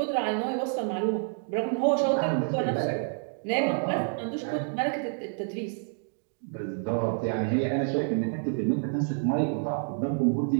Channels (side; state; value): left; silent; digital silence